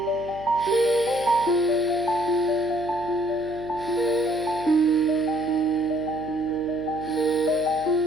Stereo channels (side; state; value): right; noise; hum, 17 dB below the sound